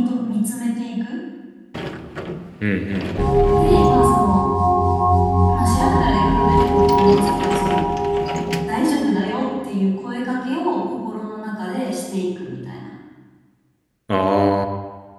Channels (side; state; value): both; identical; correlation 1.00